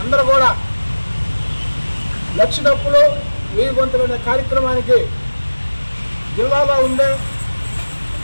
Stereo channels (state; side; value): inverted; both; correlation -1.00